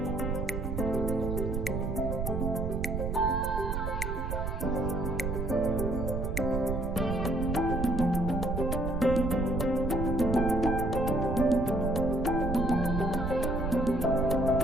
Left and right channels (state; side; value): noise; right; rumble, 2 dB below the sound